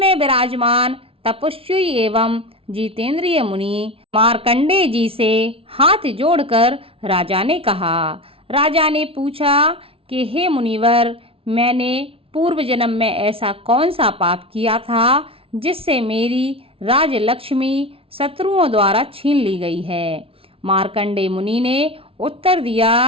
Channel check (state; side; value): late; left; 0.27 ms